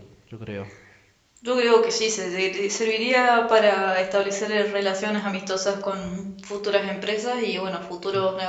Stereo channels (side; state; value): both; identical; correlation 1.00